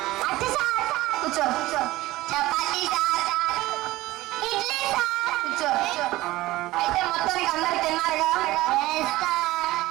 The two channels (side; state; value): left; quieter; 17.8 dB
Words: కూర్చో కూర్చో. Chapati sir, idli sir. కూర్చో. అయితే మొత్తానికి అందరు తిన్నారుగా?